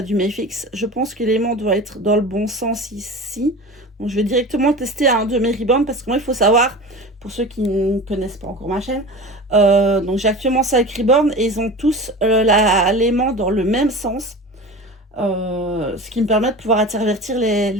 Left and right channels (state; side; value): normal; both; correlation 0.33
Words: du Mayfix. Je pense que l'aimant doit être dans le bon sens ici. Donc, je vais directement tester un de mes ribbons parce que moi, il faut savoir, pour ceux qui ne connaissent pas encore ma chaîne, donc j'ai actuellement 5 ribbons et ils ont tous l'aimant dans le même sens. Ce qui me permet de pouvoir intervertir